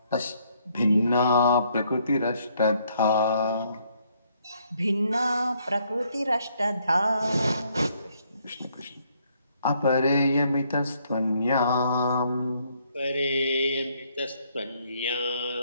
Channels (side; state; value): both; inverted; correlation -0.69